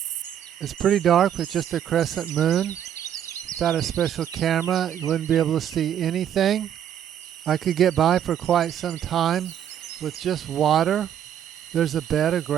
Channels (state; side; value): quieter; left; 9.9 dB